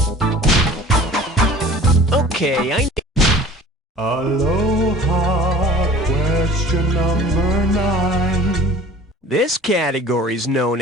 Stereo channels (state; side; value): normal; both; correlation 0.45